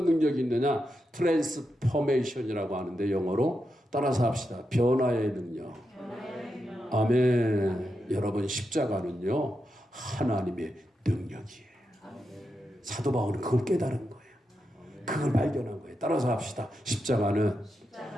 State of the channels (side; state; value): both; normal; correlation 0.87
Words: 능력이 있느냐? 트랜스포메이션이라고 하는데 영어로 따라서 합시다. 변화의 능력. 아멘. 여러분 십자가는요 하나님의 능력이에요. 사도 바울은 그걸 깨달은 거예요. 그걸 발견한 거예요. 따라서 합시다. 십자가는